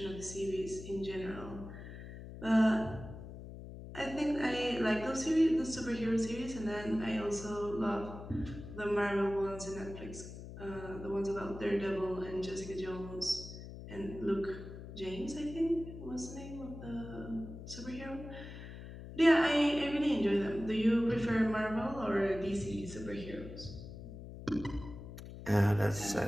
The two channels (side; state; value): left; noise; hum, 12 dB below the sound